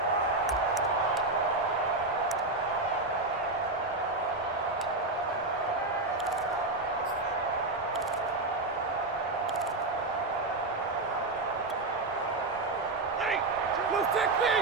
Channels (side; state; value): left; quieter; 3.1 dB